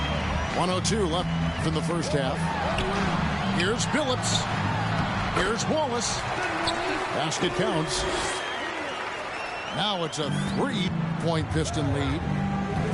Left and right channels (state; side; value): identical; both; correlation 1.00